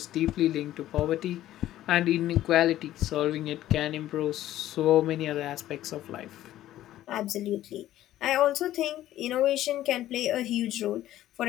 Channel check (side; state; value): right; quieter; 13.6 dB